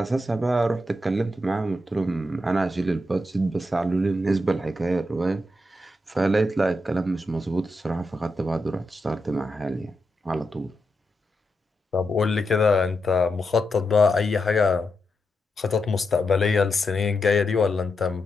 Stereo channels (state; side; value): normal; both; correlation 0.85